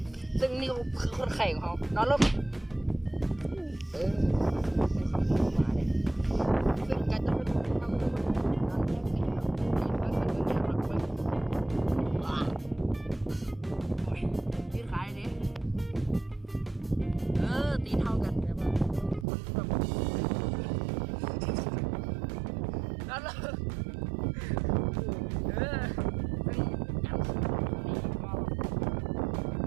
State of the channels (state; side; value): drops out; left; at 19.2 s